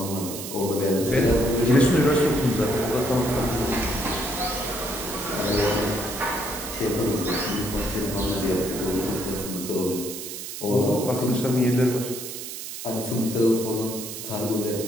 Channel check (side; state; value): right; noise; hiss, 8 dB below the sound